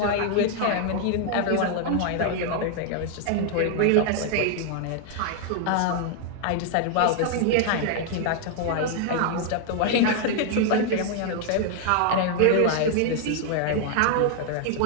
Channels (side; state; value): both; different; correlation 0.00